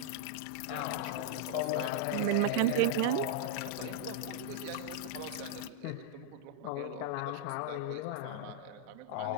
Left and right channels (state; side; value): different; both; correlation -0.02